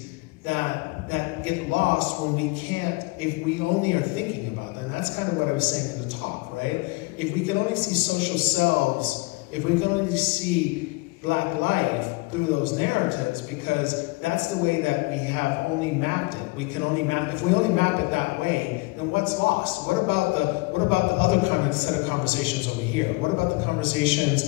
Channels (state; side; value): quieter; right; 24.8 dB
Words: that get lost when we can't, if we only are thinking about them. And that's kind of what I was saying in the talk, right? If we can only see social selves, if we can only see Black life through those narratives, because that's the way that we have only mapped it. We can only map, if we only map it that way, then what's lost? What about the other kind of set of conversations over here? What about the